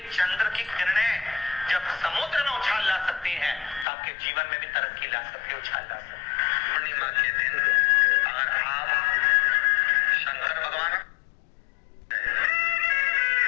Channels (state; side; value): drops out; right; at 3.9 s